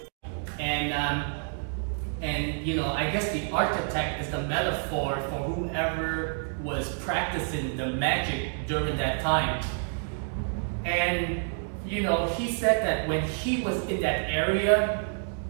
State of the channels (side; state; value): left; silent; 59 dB below the other